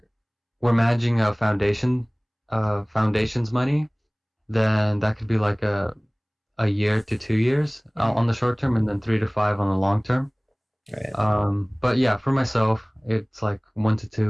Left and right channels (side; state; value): both; identical; correlation 1.00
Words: managing a foundation's money, then that could be like a year to 2 years on the short term, and then 3 to 5 on the long term. Right. But yeah, for myself, it's like 1 to